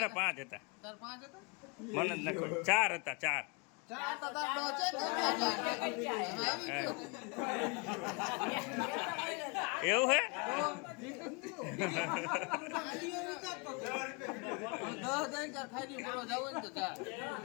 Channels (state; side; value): quieter; right; 32.1 dB